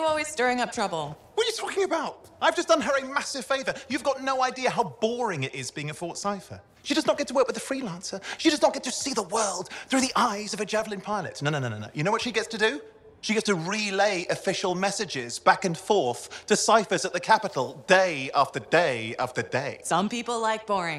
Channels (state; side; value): identical; both; correlation 1.00